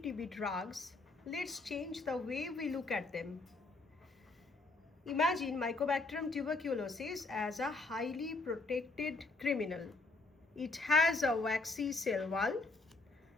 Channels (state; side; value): quieter; right; 3.3 dB